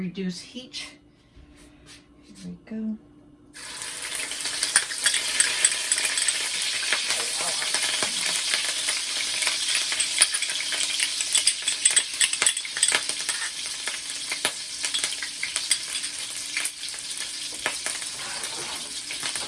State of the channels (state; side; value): identical; both; correlation 1.00